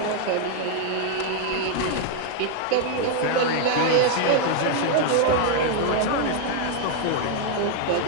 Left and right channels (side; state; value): both; different; correlation 0.00